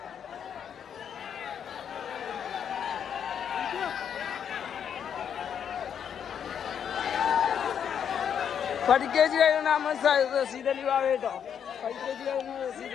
പഠിക്കേജ് കഴിയുന്ന റസീദലി ബാബ കേട്ടോ. പഠിക്കേജ് കഴിയുന്ന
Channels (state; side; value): quieter; right; 8.2 dB